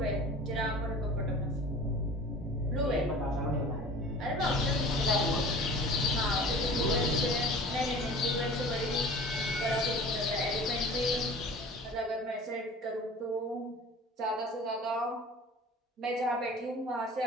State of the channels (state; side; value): normal; both; correlation 0.42